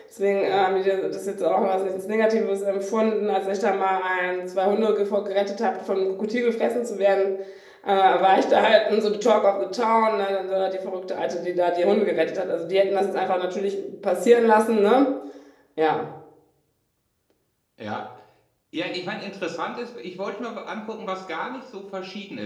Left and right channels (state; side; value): identical; both; correlation 1.00